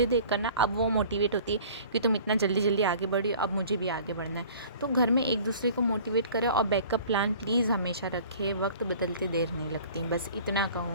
देख कर ना, अब वो मोटिवेट होती है कि तुम इतना जल्दी जल्दी आगे बढ़ी, अब मुझे भी आगे बढ़ना है। तो घर में एक दूसरे को मोटिवेट करें, और बैकअप प्लान प्लीज़ हमेशा रखें। वक्त बदलते देर नहीं लगती, बस इतना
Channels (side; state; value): both; inverted; correlation -0.47